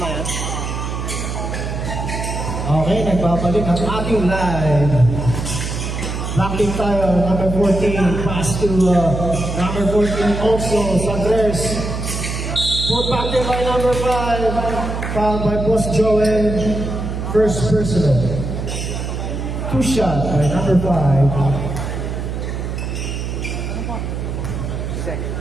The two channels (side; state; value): right; noise; hum, 4 dB below the sound